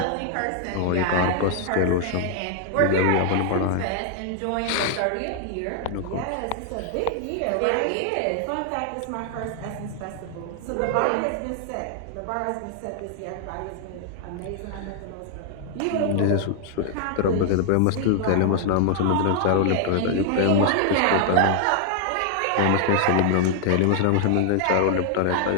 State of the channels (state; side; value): different; both; correlation 0.00